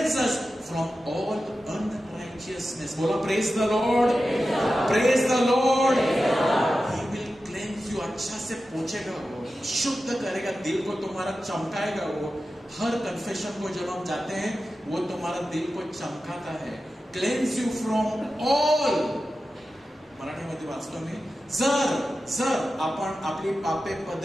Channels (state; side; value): normal; both; correlation 0.93